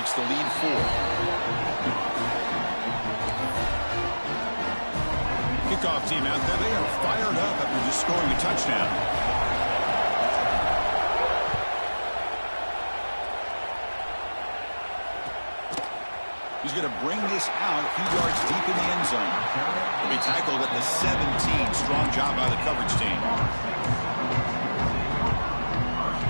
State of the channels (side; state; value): both; inverted; correlation -1.00